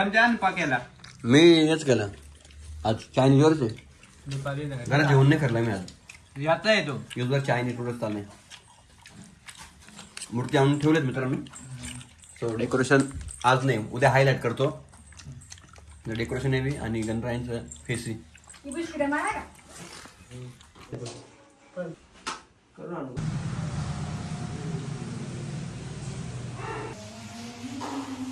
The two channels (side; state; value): both; identical; correlation 1.00